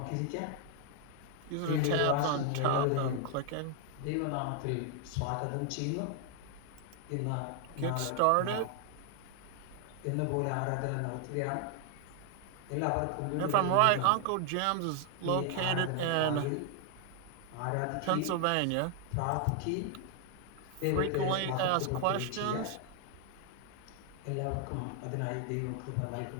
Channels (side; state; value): both; different; correlation 0.00